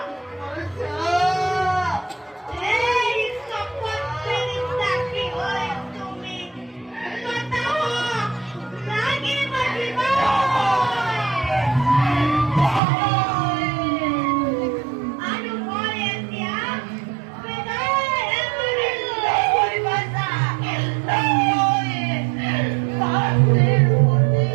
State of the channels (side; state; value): left; drops out; at 12.8 s